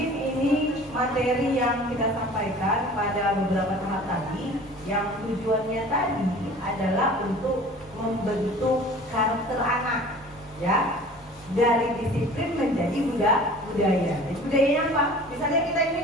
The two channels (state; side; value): normal; both; correlation 0.44